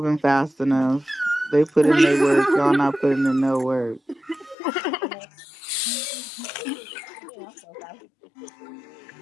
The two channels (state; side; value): drops out; right; at 4.5 s